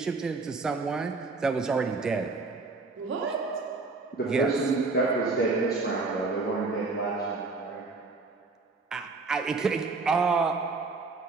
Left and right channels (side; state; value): left; quieter; 3.9 dB